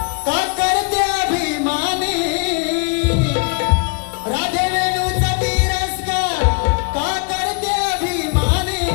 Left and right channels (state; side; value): quieter; right; 33.4 dB